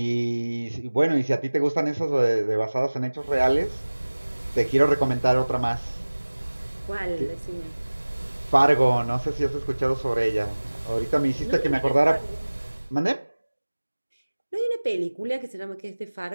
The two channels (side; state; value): both; inverted; correlation -1.00